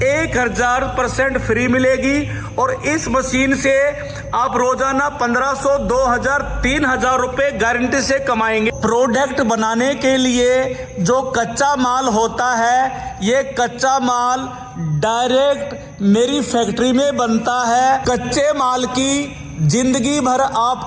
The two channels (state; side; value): identical; both; correlation 1.00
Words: 1000% फ्री मिलेगी। और इस मशीन से आप रोजाना 1500, 2000, 3000 रुपए गारंटी से कमाएंगे। प्रोडक्ट बनाने के लिए जो कच्चा माल होता है, ये कच्चा माल डायरेक्ट मेरी फैक्ट्री में बनता है। कच्चे माल की जिंदगी भर